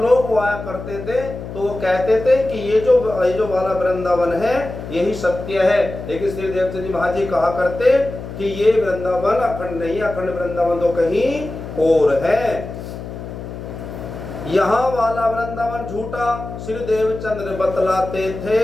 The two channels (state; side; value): noise; left; hum, 10 dB below the sound